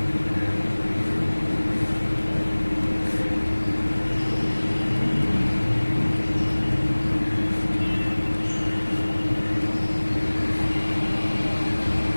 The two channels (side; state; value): both; inverted; correlation -1.00